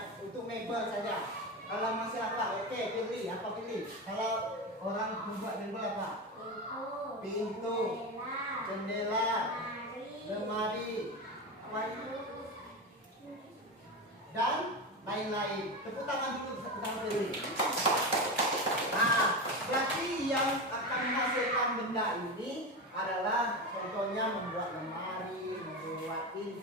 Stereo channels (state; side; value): normal; both; correlation 0.19